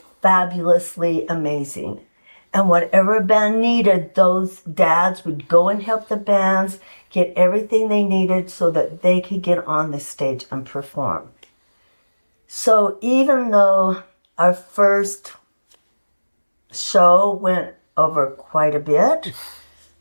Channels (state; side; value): inverted; both; correlation -1.00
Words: fabulously amazing. And whatever band needed, those dads would go and help the bands get everything they needed so that they could get on the stage and perform. So even though our first show went over quite a bit,